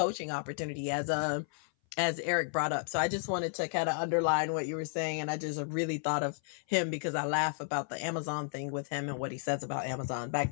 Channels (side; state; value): right; silent; 56 dB below the other